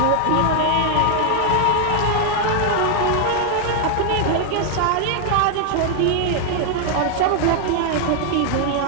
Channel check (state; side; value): different; both; correlation 0.00